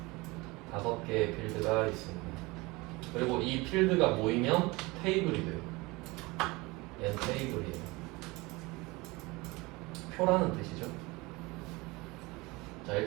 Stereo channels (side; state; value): left; quieter; 23.5 dB